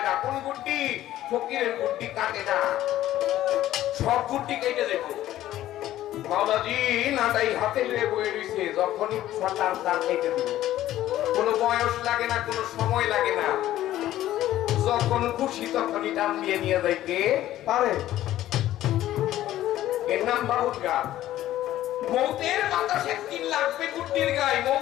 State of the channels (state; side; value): quieter; right; 13.7 dB